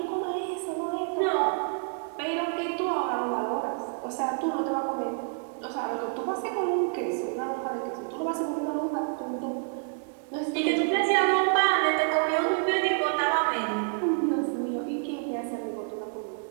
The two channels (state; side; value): silent; left; 59 dB below the other